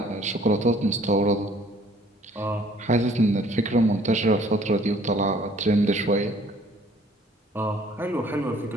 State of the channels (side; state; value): both; normal; correlation 0.57